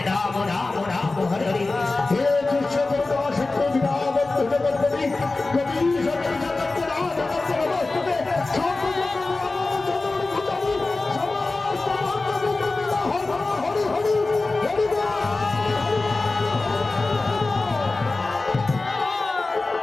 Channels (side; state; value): right; quieter; 3.4 dB